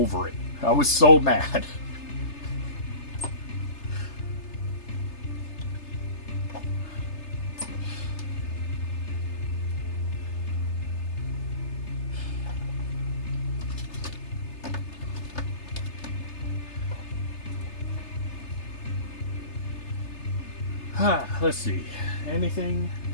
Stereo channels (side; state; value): right; late; 3.3 ms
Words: it. I was so mad. Let's see. Anything